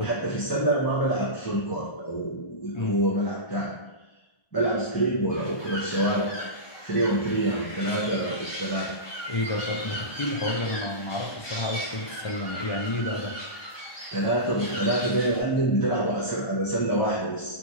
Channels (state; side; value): late; right; 1.3 ms